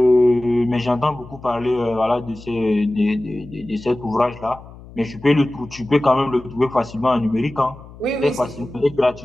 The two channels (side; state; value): left; noise; hum, 19 dB below the sound